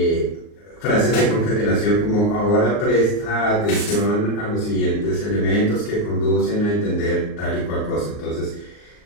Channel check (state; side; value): late; right; 39 ms